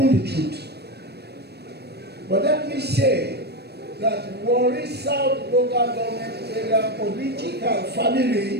the truth. But let me say that Warri South local government area political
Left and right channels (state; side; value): late; left; 0.47 ms